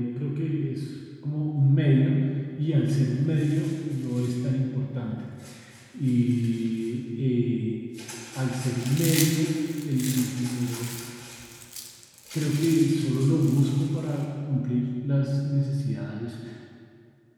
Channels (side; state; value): both; identical; correlation 1.00